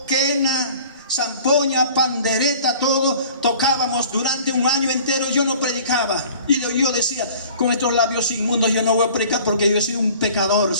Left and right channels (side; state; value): both; inverted; correlation -0.48